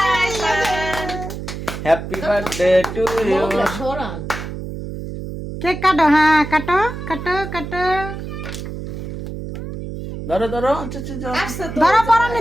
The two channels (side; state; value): right; noise; hum, 8 dB below the sound